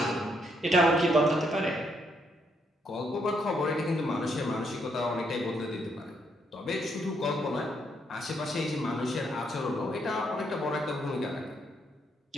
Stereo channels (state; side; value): normal; both; correlation 0.74